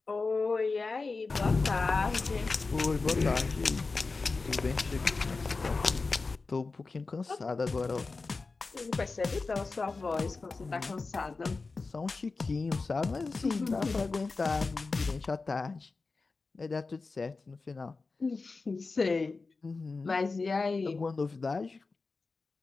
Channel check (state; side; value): quieter; right; 4.0 dB